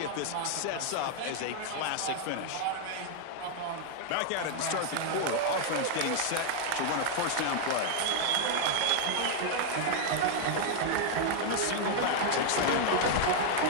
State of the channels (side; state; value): both; different; correlation 0.00